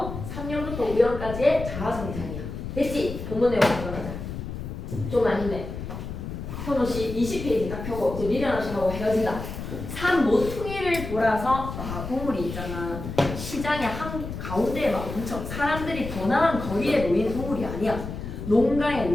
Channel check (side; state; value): left; noise; rumble, 8 dB below the sound